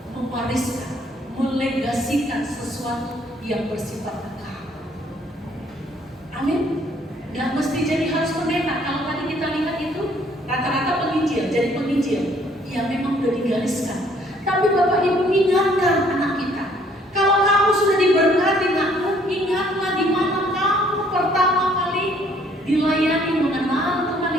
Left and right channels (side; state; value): both; normal; correlation 0.62